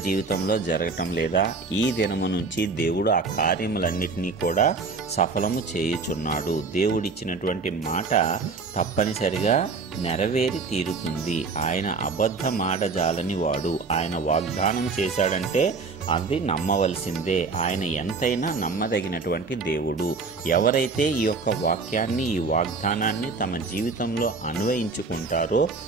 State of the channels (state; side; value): quieter; left; 4.3 dB